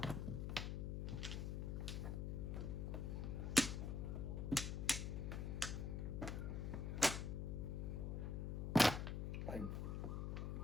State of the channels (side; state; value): left; noise; hum, 1 dB below the sound